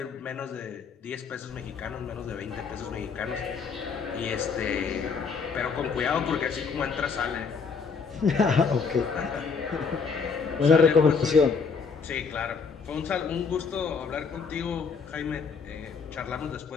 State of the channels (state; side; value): quieter; right; 5.3 dB